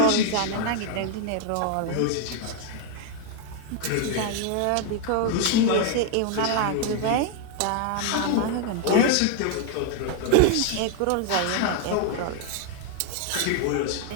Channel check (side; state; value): both; different; correlation 0.00